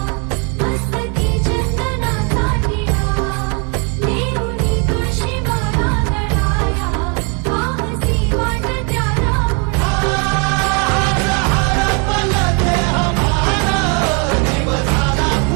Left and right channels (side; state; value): left; quieter; 34.4 dB